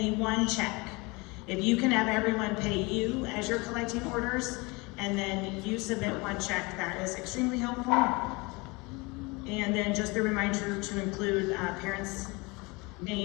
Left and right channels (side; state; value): right; quieter; 26.0 dB